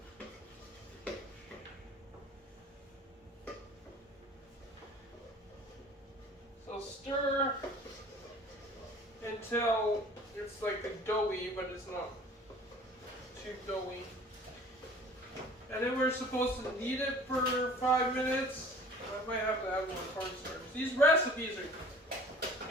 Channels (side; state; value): both; normal; correlation 0.47